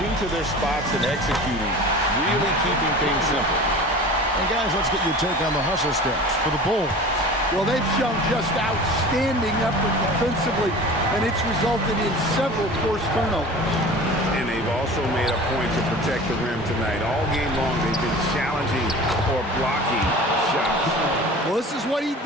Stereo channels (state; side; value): normal; both; correlation 0.38